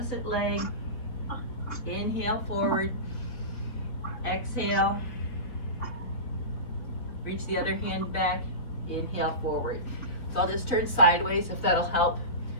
leg. Inhale, forward. Exhale. Reach the other hand back. Inhale, forward. So I'll just turn sideways if that'll help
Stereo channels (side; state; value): right; late; 3.9 ms